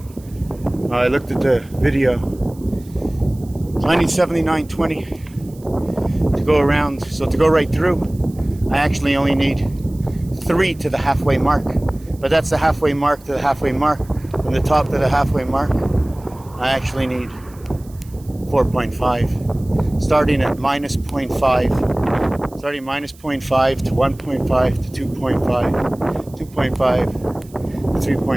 I looked at the video. So I need 79.20 to go around. So to go right through, I actually only need 3 to the halfway mark. But that's the halfway mark to the halfway mark. From the top to the halfway mark, I actually need 4.5. Starting at minus 0.5. Starting minus 0.5 to 1.5 to 2.5, 2.5 to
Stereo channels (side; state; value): right; noise; hiss, 26 dB below the sound